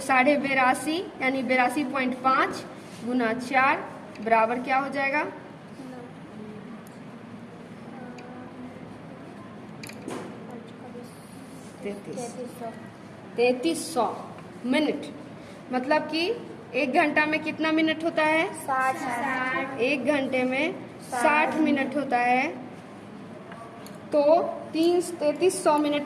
82.5 यानी 82.5 गुना 4 बराबर क्या हो जाएगा 3300 मिनट। मतलब कि 1 घंटा में कितना मिनट होता है 60। 1 घंटे में 60 मिनट होता है, तो 3300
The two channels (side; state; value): both; identical; correlation 1.00